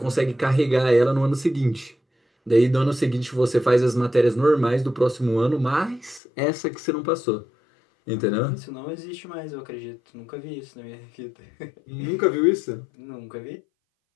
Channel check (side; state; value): right; drops out; at 6.2 s